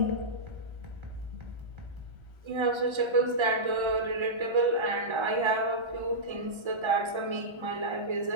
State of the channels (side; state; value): left; late; 1.3 ms